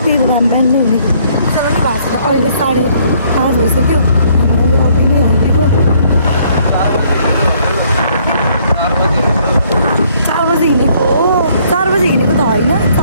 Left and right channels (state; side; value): inverted; both; correlation -0.65